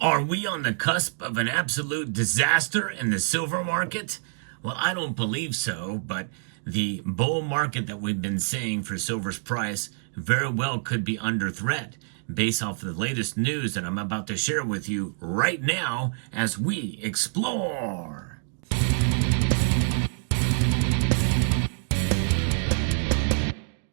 Are we on the cusp of an absolute disaster in the silver market? Well, I don't believe so, but the bull market that we've been seeing for silver's price very well could be under threat based off of the latest news that I'm about to share with you right now as we explore.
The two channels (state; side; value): silent; left; digital silence